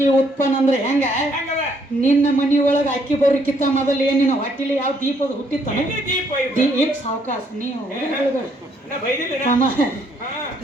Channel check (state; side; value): normal; both; correlation 0.69